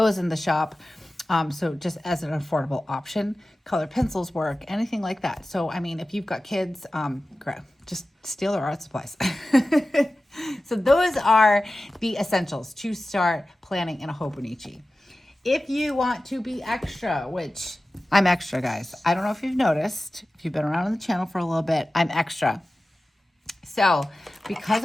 in the shop. So just as an affordable option, colored pencils work, anything like that. So, I mean, if you've got kids, just steal their art supplies. So those are the essentials to start planning in a Hobonichi. If you want to be extra, which I'm extra, guys. I don't know if you've noticed, if you've been around on the channel for a little bit, I'm extra. So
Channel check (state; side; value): normal; both; correlation 0.95